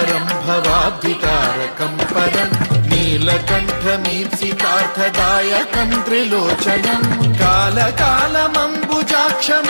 भवाब्धितारकं परं नीलकण्ठमीप्सितार्थदायकं त्रिलोचनं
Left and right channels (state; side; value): inverted; both; correlation -1.00